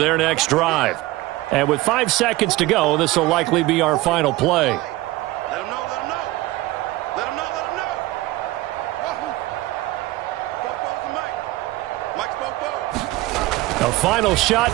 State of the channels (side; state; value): left; quieter; 18.4 dB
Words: next drive. And with 5 seconds to go, this will likely be our final play. A final